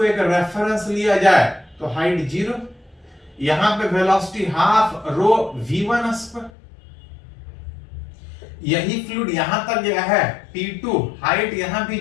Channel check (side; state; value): right; drops out; at 6.5 s